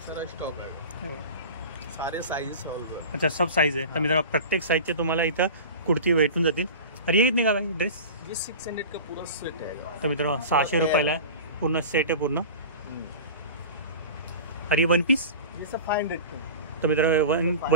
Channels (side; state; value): both; inverted; correlation -0.34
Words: सारा स्टॉक आहे. हे बघा सारे साइजेस सॉल्व. अच्छा सब साईज आहे. तर मित्रांनो प्रत्येक साईजचे तुम्हाला इथं कुर्ती भेटून जातील. अरे हे कितने का भाई ड्रेस? ये 600 का पूरा सेट है. तर मित्रांनो 600 रुपयाला आहे, पूर्ण सेट आहे पूर्ण. अरे वन पीस? ये सब 500 का. तर मित्रांनो